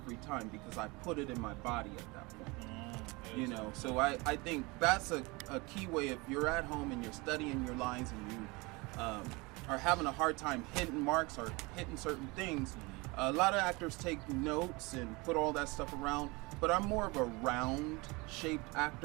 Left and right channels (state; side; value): quieter; left; 25.4 dB